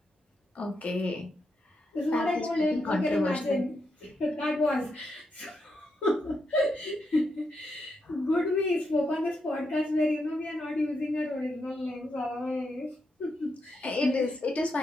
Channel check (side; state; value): both; normal; correlation 0.83